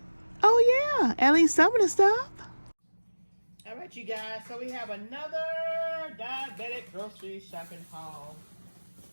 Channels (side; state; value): both; inverted; correlation -1.00